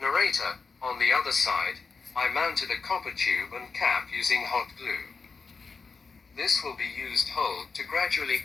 Narrator, on the other side, I mounted a copper tube and cap using hot glue. This will be used hold to gradually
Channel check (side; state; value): right; quieter; 4.8 dB